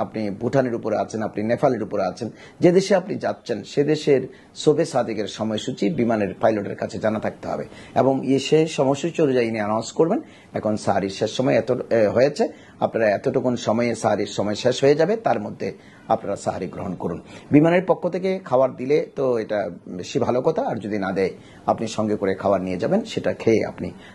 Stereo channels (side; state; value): both; identical; correlation 1.00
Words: আপনি ভুটানের উপরে আছেন, আপনি নেপালের উপরে আছেন, যে দেশে আপনি যাচ্ছেন সে দেশের শোবে সাদিকের সময়সূচি বিমানের পাইলটের কাছে জানা থাকতে হবে, এবং সে সময়সূচি অনুযায়ী অ্যানাউন্স করবেন এখন সাহারির শেষ সময় এত হয়েছে, আপনারা এতটুকুন সময়ে সাহারির সময় শেষ হয়ে যাবে, তার মধ্যে আপনারা সাহারি গ্রহণ করুন। বিমানের পক্ষ থেকে খাবার দিলে তো এটা বেশি ভালো কথা, আর যদি না দেয় আপনি সঙ্গে করে খাবার নিয়ে যাবেন, সেটা খেয়ে আপনি